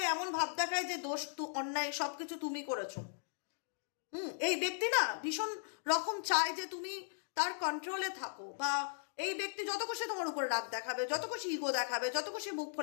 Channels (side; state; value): right; silent; digital silence